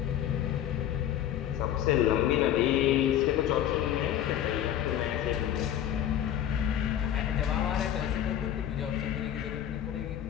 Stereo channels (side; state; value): right; quieter; 10.9 dB